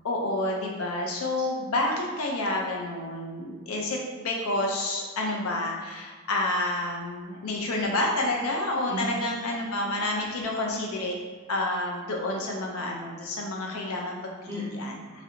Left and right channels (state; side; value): normal; both; correlation 0.00